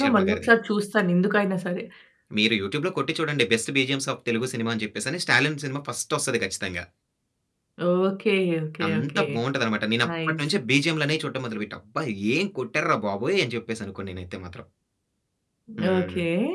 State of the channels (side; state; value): both; identical; correlation 1.00